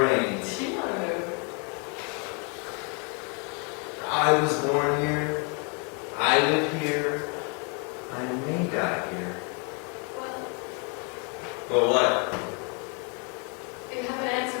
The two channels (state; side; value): quieter; right; 35.3 dB